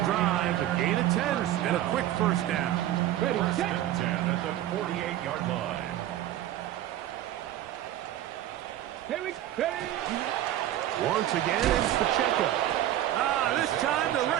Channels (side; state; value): left; quieter; 13.0 dB